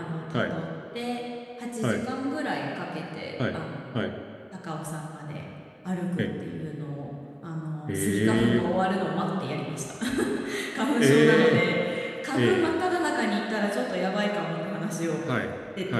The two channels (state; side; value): identical; both; correlation 1.00